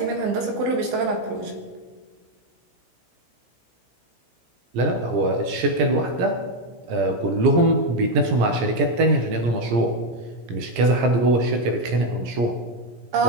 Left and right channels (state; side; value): late; left; 17 ms